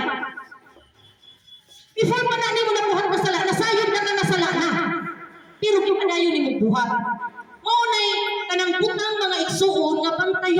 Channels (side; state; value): both; identical; correlation 1.00